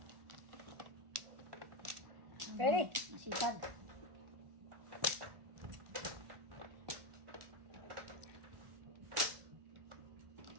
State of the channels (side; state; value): left; late; 1.4 ms